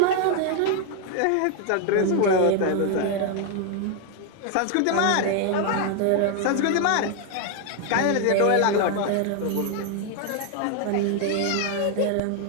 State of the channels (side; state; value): both; different; correlation 0.00